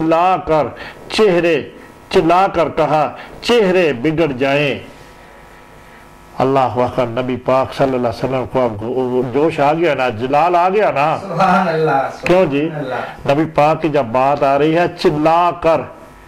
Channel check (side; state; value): both; identical; correlation 1.00